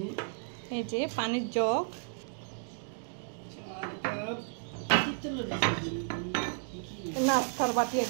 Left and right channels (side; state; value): left; silent; digital silence